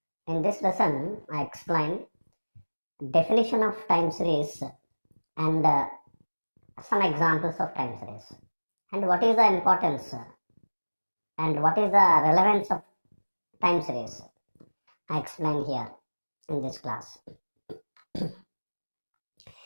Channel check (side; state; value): both; inverted; correlation -1.00